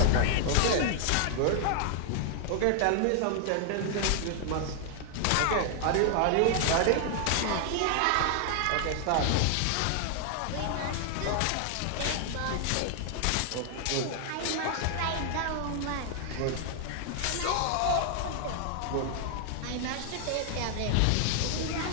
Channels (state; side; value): different; both; correlation 0.00